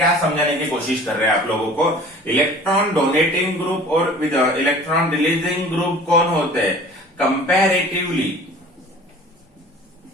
समझाने की कोशिश कर रहे हैं आप लोगों को। इलेक्ट्रॉन डोनेटिंग ग्रुप और विद इलेक्ट्रॉन रिलीजिंग ग्रुप कौन होते हैं, कंपैरेटिवली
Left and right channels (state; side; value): normal; both; correlation 0.45